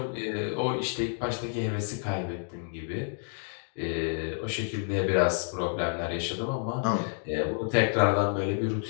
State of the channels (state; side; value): silent; right; 58 dB below the other